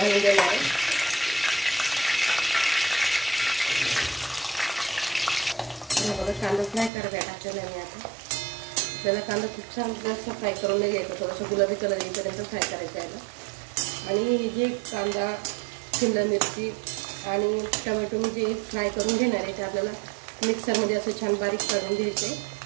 देणार आहे. बघा, कांदा फ्राय करायला टाकलेला आहे मी आता. आपल्याला कांदा खूप छान जास्त फ्राय करून नाही घ्यायचा, थोडंसं गुलाबी कलर येईपर्यंत फ्राय करायचं आहे. आणि जे कांदा, शिमला मिरची आणि टमॅटो मी जे फ्राय करून घेणार आहे ते आपल्याला मिक्सरमध्ये असं छान बारीक करून घ्यायचं आहे.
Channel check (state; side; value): drops out; left; at 6.9 s